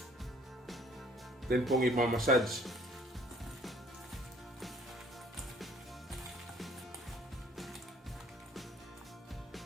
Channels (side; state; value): both; normal; correlation 0.57